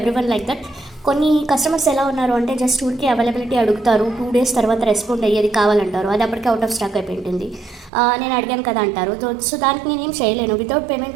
like that. కొన్ని కస్టమర్స్ ఎలా ఉన్నారు అంటే జస్ట్ ఊరికి అవైలబిలిటీ అడుగుతారు, 2 days తర్వాత రెస్పాండ్ అయ్యేది కావాలంటారు, అది అప్పటికే అవుట్ ఆఫ్ స్టాక్ అయిపోయింటుంది. నేను అడిగాను కదా అంటారు. సో దానికి నేనేం చేయలేను. Without payment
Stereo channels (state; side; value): drops out; left; at 7.9 s